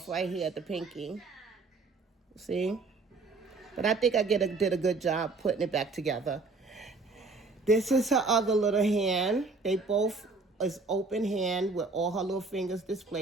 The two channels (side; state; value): left; quieter; 3.8 dB